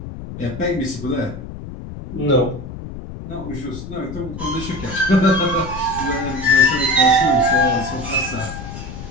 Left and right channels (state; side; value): noise; left; rumble, 10 dB below the sound